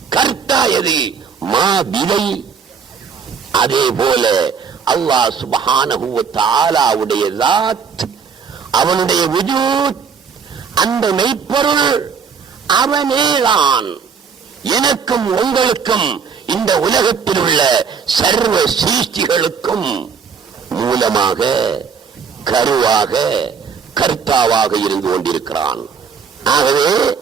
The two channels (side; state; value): left; quieter; 6.2 dB